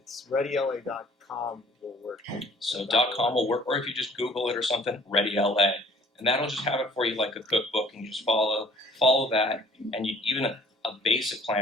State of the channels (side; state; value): both; normal; correlation 0.54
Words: readyla.com will work. So .com will work, or if you just Google it or something, readyla, and that'll just have it for you like a cookbook, and you just follow that, and even a basic